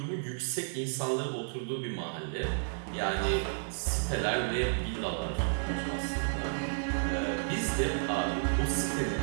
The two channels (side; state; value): left; silent; digital silence